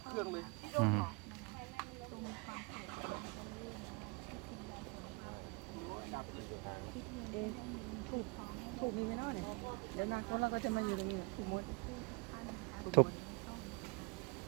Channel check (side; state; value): left; quieter; 28.9 dB